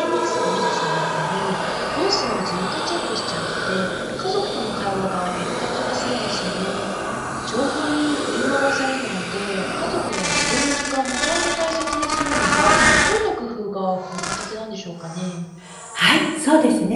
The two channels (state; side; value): identical; both; correlation 1.00